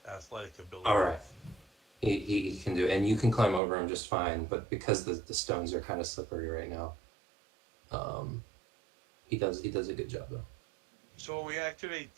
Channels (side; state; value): left; drops out; at 3.6 s